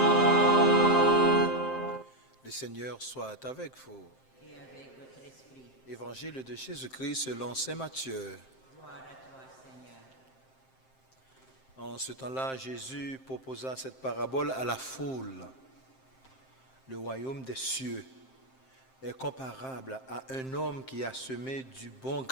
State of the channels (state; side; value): late; right; 7.6 ms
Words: Le Seigneur soit avec vous. Et avec votre esprit. Évangile de Jésus-Christ selon saint Matthieu. Gloire à toi, Seigneur. En ce temps-là, Jésus proposa cette parabole à la foule. Le royaume des cieux est comparable à un homme qui a semé du bon